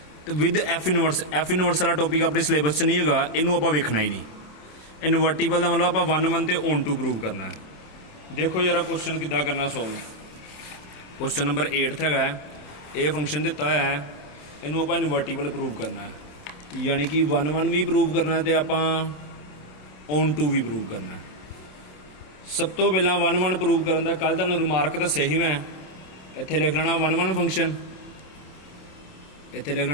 तो विद एफ इनवर्स वाला टॉपिक अपने सिलेबस च नहीं होगा, इनू आप वेखना ही नहीं। इनवर्टिबल का मतलब आप 1 1 तो ऑन टू प्रूव करना है। देखो जरा क्वेश्चन किदा करना सॉल्व। क्वेश्चन नंबर 8 है, ये फंक्शन दिता हुआ है, इनू आप इनवर्टिबल प्रूव करना है, यानी कि 1 1 भी प्रूव करना है तो आप ऑन टू भी प्रूव करना है। सब तो पहला 1 1 प्रूव करने का कल तुहानूं रिमार्क दस्सिया ही मैं, इत्थे लिख लेना 1 1 फंक्शन, इत्थे लिख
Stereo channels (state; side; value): late; right; 27 ms